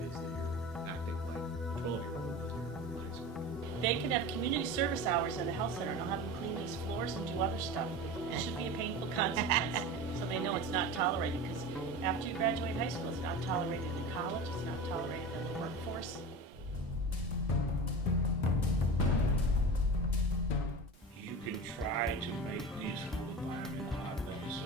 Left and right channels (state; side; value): normal; both; correlation 0.30